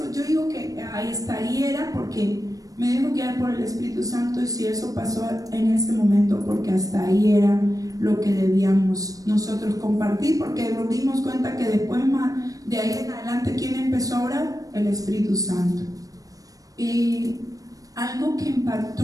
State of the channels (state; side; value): late; left; 0.17 ms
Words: Yo digo que ahí estaría porque me dejo guiar por el Espíritu Santo, y si eso pasó en ese momento, porque hasta ahí era lo que debíamos nosotros compartir, porque nos dimos cuenta que después de ahí en adelante, ¿quién empezó a orar? El Espíritu Santo. Y algo que